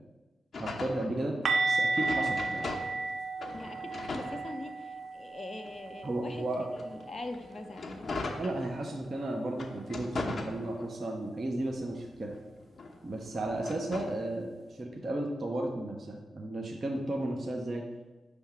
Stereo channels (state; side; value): normal; both; correlation 0.90